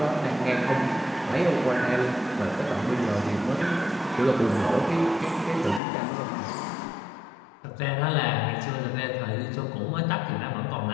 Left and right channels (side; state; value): right; drops out; at 5.8 s